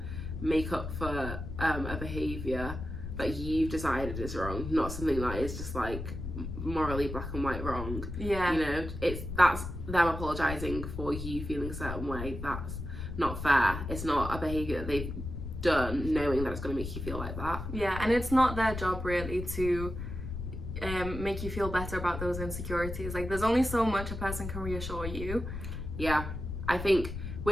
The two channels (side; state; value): left; noise; rumble, 6 dB below the sound